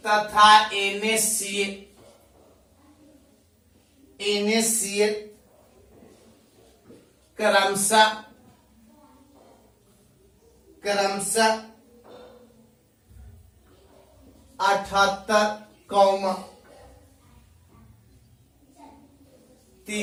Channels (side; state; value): both; identical; correlation 1.00